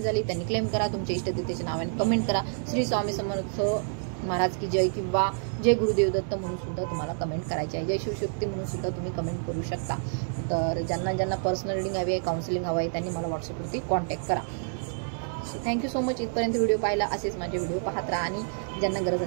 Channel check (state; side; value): silent; left; digital silence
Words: झाली त्यांनी क्लेम करा, तुमच्या इष्टदेवतेच्या नावाने कमेंट करा. श्री स्वामी समर्थ महाराज की जय किंवा जय गुरुदेव दत्त म्हणून सुद्धा तुम्हाला कमेंट करायची आहे. जय शिवशक्ती म्हणून सुद्धा तुम्ही कमेंट करू शकता. तर ज्यांना ज्यांना पर्सनल रीडिंग हवी आहे, काउन्सिलिंग हवं आहे, त्यांनी मला व्हॉट्सअपवरती कॉन्टॅक्ट करा. Thank you so much. इथपर्यंत व्हिडिओ पाहिला. असेच माझे व्हिडिओ पाहत राहा आणि ज्यांना गरज